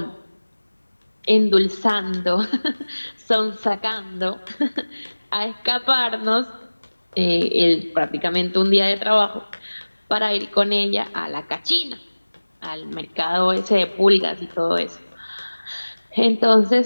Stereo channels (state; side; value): inverted; both; correlation -1.00